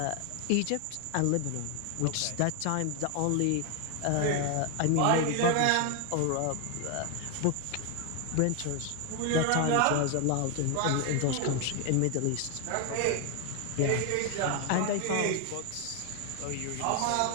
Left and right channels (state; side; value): different; both; correlation 0.00